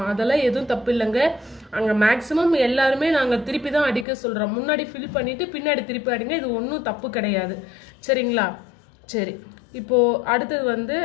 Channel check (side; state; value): right; drops out; at 4.0 s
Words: அதெல்லாம் எதுவும் தப்பு இல்லைங்க. அங்கே மேக்ஸிமம் எல்லாருமே நாங்கள் திருப்பி தான் அடிக்க சொல்கிறோம். முன்னாடி ஃபில் பண்ணிவிட்டு பின்னாடி திருப்பி அடிங்க, இது ஒன்றும் தப்பு கிடையாது. சரிங்களா? சரி, இப்போது அடுத்தது வந்து